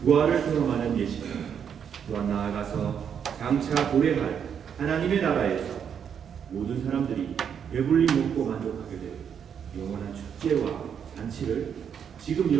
부활을 경험하는 예식입니다. 또한 나아가서 장차 도래할 하나님의 나라에서 모든 사람들이 배불리 먹고 만족하게 될 영원한 축제와 잔치를 지금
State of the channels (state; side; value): quieter; left; 7.9 dB